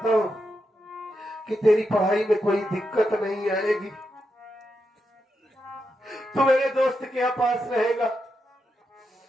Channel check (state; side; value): normal; both; correlation 0.85